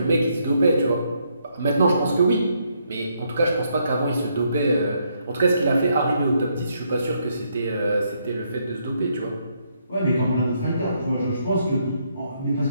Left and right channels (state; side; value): inverted; both; correlation -0.74